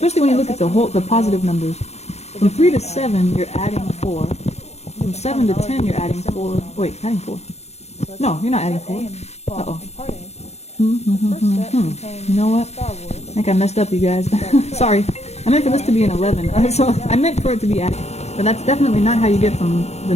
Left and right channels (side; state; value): right; late; 0.31 ms